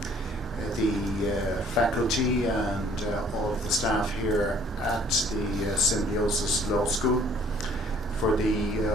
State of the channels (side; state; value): both; normal; correlation 0.57